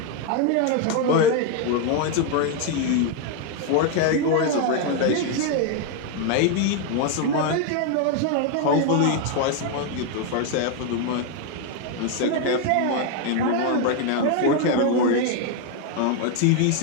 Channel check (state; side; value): different; both; correlation 0.01